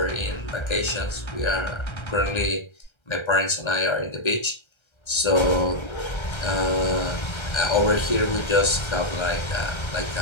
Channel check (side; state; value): right; late; 1.3 ms